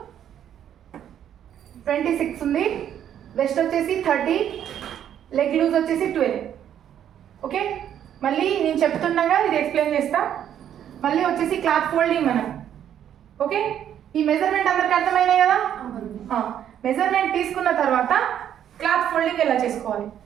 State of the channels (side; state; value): left; quieter; 10.0 dB